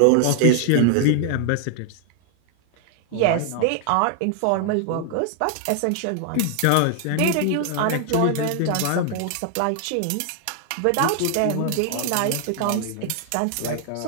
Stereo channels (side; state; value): both; different; correlation 0.00